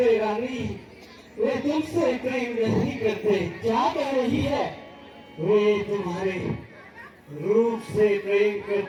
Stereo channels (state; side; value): identical; both; correlation 1.00